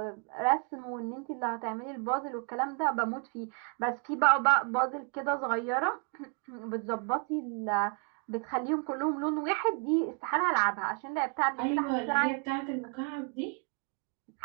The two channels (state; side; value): quieter; left; 38.5 dB